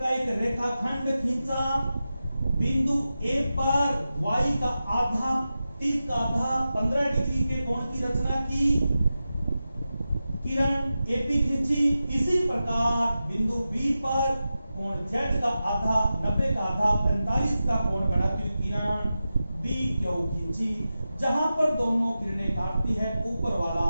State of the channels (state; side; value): inverted; both; correlation -0.92